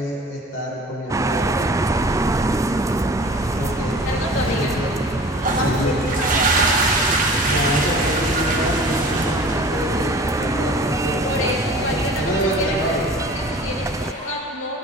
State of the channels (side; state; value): both; normal; correlation 0.43